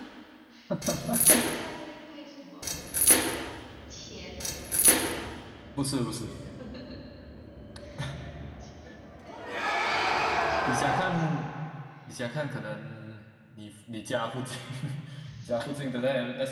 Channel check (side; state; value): both; identical; correlation 1.00